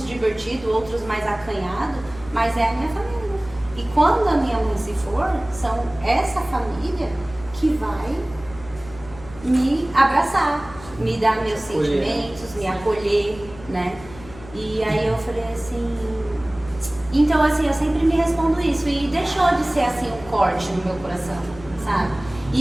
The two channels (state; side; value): noise; left; hum, 18 dB below the sound